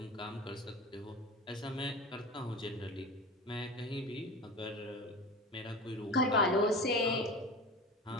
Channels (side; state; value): both; normal; correlation 0.31